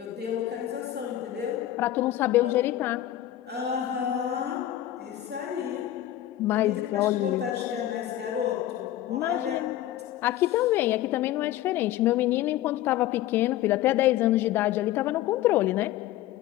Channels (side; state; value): right; quieter; 13.4 dB